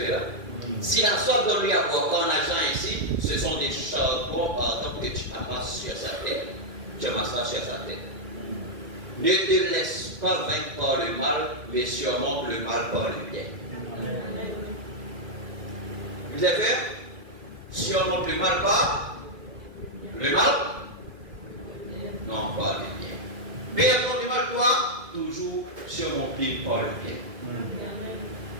là? Si la sorte donne lui à boire ton argent ici, ce sont des charbons pardon, que tu amasses sur sa tête. Tu amasses sur sa tête. Ne te laisse pas vaincre par le mal, mais surmonte le mal par le bien. Vous avez fait? Surmonte le mal par le mal? Non, pas le bien. Mais contre le mal, toi, toujours surmonter par le bien.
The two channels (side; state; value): left; late; 1.9 ms